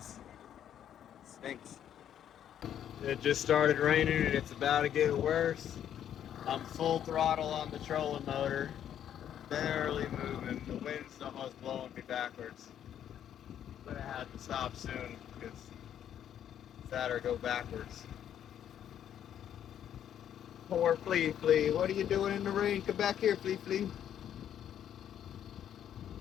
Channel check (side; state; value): right; quieter; 10.0 dB